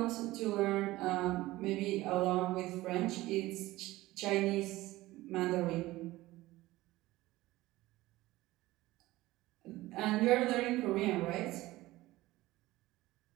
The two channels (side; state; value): left; quieter; 17.9 dB